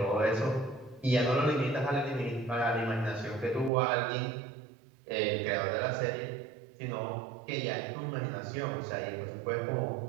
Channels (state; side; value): drops out; left; at 3.7 s